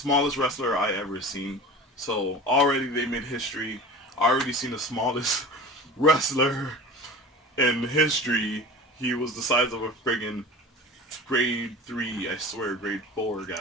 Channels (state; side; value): normal; both; correlation 0.36